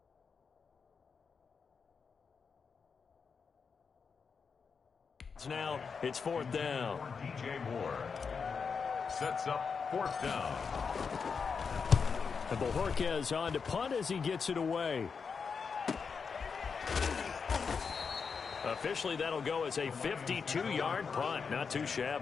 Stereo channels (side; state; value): right; quieter; 5.6 dB